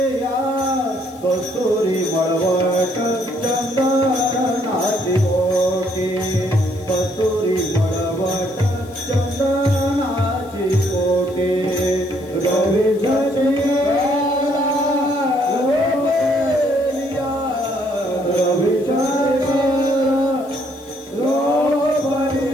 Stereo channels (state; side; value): noise; left; hiss, 25 dB below the sound